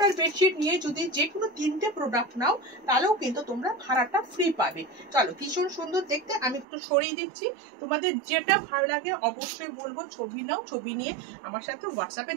বেডশিট নিয়ে যদি যে কোনো তিনটে প্রোডাক্ট নাও তাহলেও কিন্তু তোমরা ভাড়াটা ফ্রি পাবে। চলো, ভীষণ সুন্দর দেখতে। আমি একটু সরিয়ে দিচ্ছি, তোমাদের যেটা ভালো লাগে অবশ্যই বলবো ছবি নাও, ছবি নিয়ে আমার সাথে হোয়াটসঅ্যাপে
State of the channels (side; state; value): left; drops out; at 6.7 s